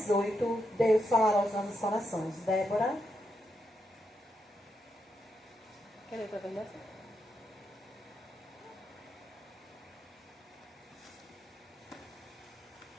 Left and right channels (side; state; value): both; normal; correlation 0.83